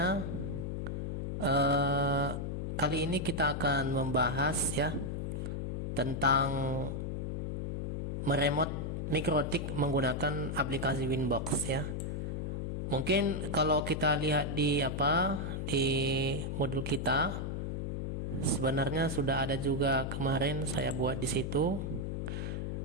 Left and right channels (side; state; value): left; noise; hum, 2 dB below the sound